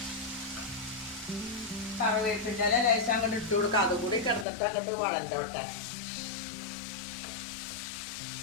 കറിവേപ്പിൻ്റെ ലേശം അങ്ങോട്ട് ഇട്ട് കൊടുക്കാം. അതുകൂടി കിടന്നിട്ട് അങ്ങോട്ട് വഴണ്ടോട്ടെ.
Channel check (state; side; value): drops out; right; at 4.5 s